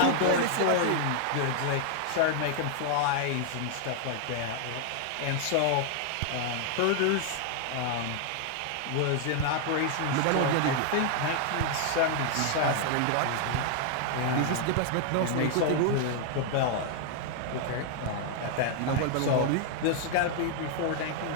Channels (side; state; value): both; different; correlation 0.00